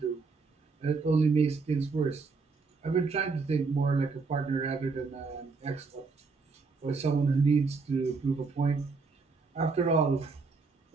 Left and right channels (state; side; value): quieter; left; 4.4 dB